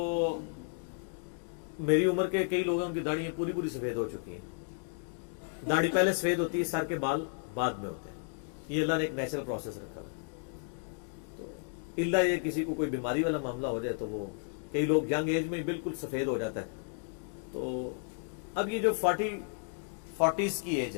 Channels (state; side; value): silent; right; 56 dB below the other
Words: میری عمر کے کئی لوگوں کی داڑھی پوری پوری سفید ہو چکی ہیں. داڑھی پہلے سفید ہوتی ہے, سر کے بال بعد میں ہوتے ہیں. یہ اللہ نے ایک نیچرل پروسیس رکھا ہے. تو اللہ یہ کسی کو کوئی بیماری والا معاملہ ہو جائے تو وہ کئی لوگ ینگ ایج میں بالکل سفید ہو جاتا ہے. تو اب یہ جو 40s کی ایج